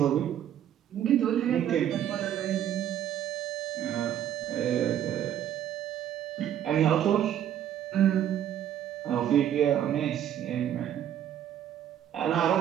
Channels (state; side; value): quieter; left; 10.6 dB